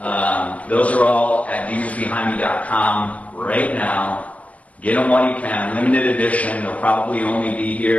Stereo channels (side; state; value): right; late; 0.072 ms